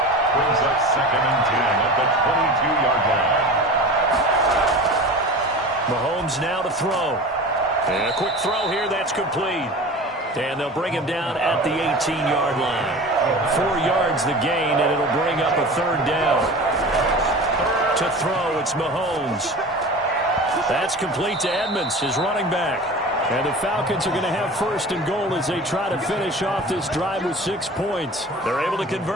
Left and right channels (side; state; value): both; normal; correlation 0.35